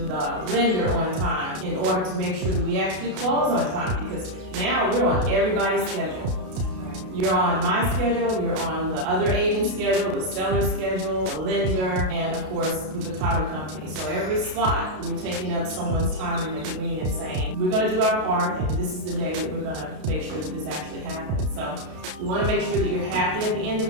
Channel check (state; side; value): late; left; 32 ms